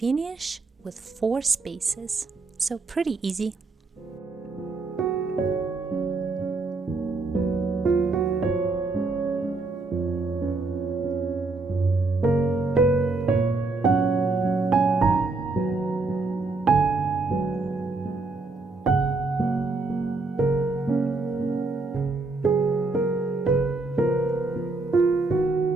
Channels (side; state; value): left; quieter; 3.6 dB